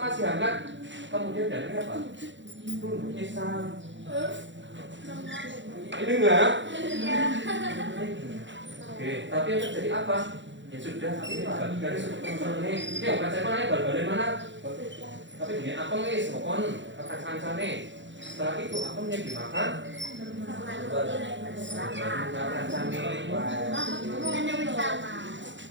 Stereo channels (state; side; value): late; left; 0.54 ms